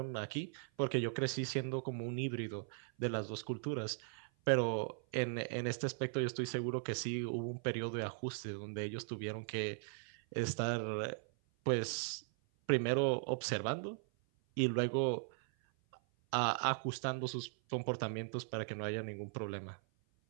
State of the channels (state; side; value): silent; left; 52 dB below the other